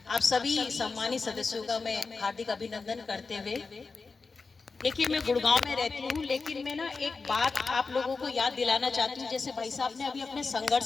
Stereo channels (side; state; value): right; quieter; 4.4 dB